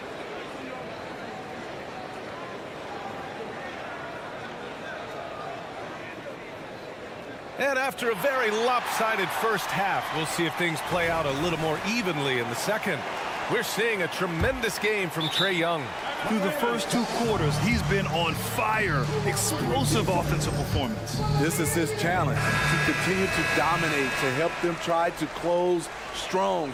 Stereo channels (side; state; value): both; identical; correlation 1.00